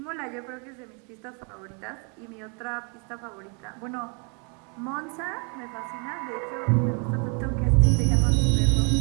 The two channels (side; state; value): left; quieter; 36.0 dB